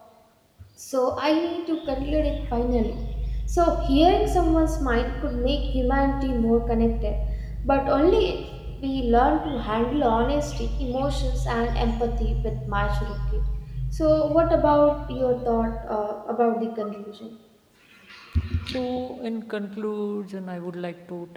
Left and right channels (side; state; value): both; identical; correlation 1.00